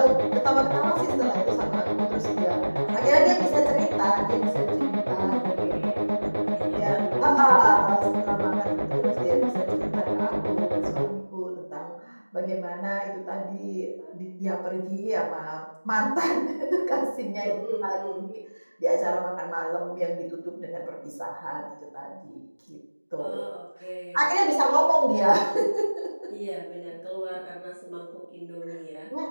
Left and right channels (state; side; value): inverted; both; correlation -1.00